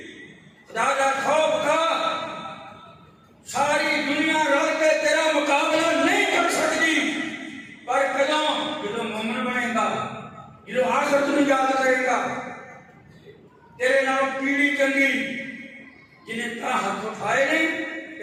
خدا دا خوف کھا، ساری دنیا رل کے تیرا مقابلہ نہیں کر سکتی، پر جدوں مومن بنے گا، جدوں آخرت نوں یاد کرے گا، تیرے نال پیڑھی چنگی جنہیں تا ہاتھ اٹھائے نہیں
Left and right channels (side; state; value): both; identical; correlation 1.00